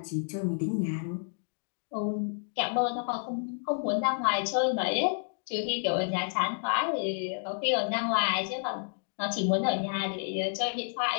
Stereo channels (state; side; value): silent; right; digital silence